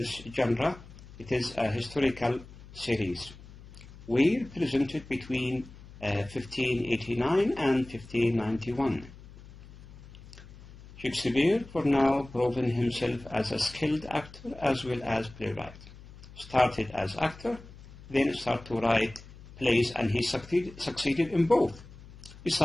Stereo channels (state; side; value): noise; left; hum, 18 dB below the sound